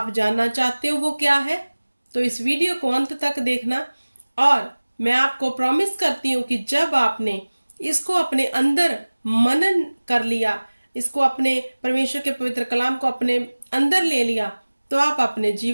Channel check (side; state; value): both; inverted; correlation -1.00